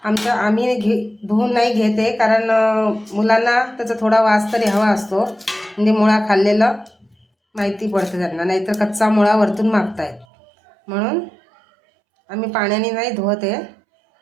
आम्ही धुवून नाही घेते, कारण मुलांना त्याचा थोडा वास तरी हवा असतो, म्हणजे मुळा खाल्लेलं माहिती पडते त्यांना, नाहीतर कच्चा मुळा वरतून मागतायत, म्हणून आम्ही पाण्याने नाही धुवते।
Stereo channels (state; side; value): drops out; left; at 10.2 s